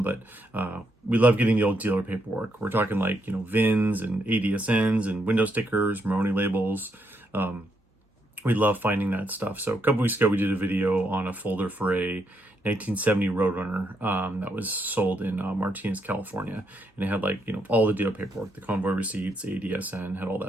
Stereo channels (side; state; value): both; normal; correlation 0.77